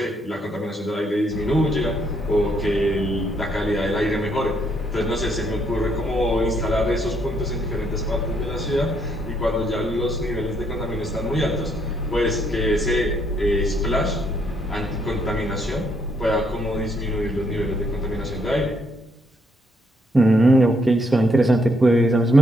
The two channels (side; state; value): both; normal; correlation 0.73